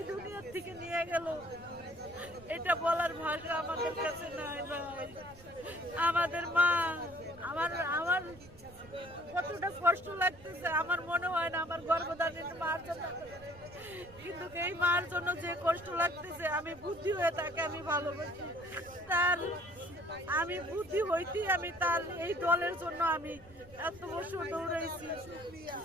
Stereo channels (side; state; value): right; noise; rumble, 21 dB below the sound